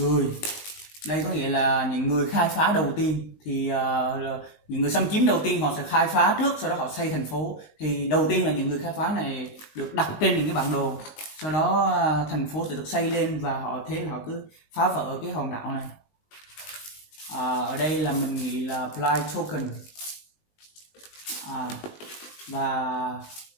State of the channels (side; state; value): right; late; 19 ms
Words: Đây có nghĩa là những người khai phá đầu tiên, thì những người xâm chiếm đầu tiên họ sẽ khai phá trước, sau đó họ xây thành phố. Thì đầu tiên là những người khai phá này được đặt trên những cái bản đồ, sau đó thành phố sẽ được xây lên và họ cứ phá vỡ cái hòn đảo này. Ở đây là mình nghĩ là Blight token. Và